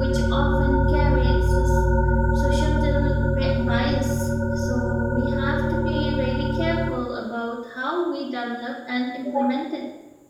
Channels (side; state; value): both; identical; correlation 1.00